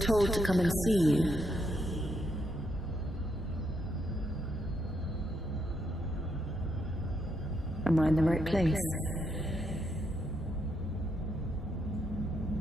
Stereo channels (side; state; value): both; normal; correlation 0.78